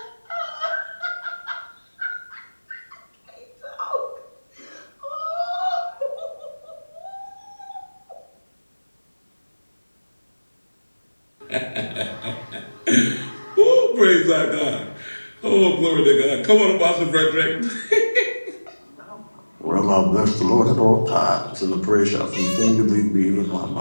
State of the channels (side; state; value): both; inverted; correlation -1.00